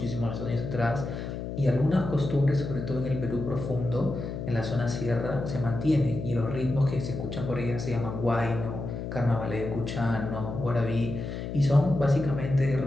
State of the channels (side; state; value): left; noise; hum, 6 dB below the sound